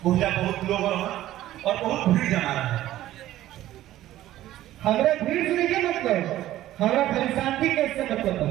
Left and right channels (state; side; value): quieter; left; 14.2 dB